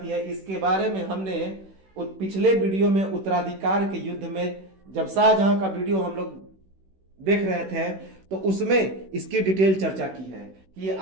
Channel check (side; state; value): left; late; 16 ms